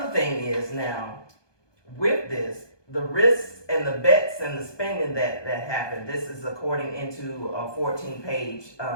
thing is now, with this, the risks and the bets and the spending that happened, this is according into a 14-page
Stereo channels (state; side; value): late; right; 1.2 ms